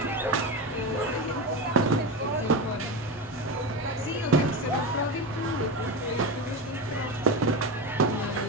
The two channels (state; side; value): normal; both; correlation 0.20